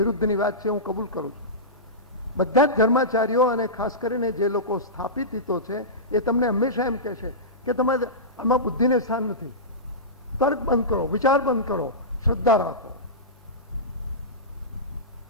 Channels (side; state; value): both; normal; correlation -0.18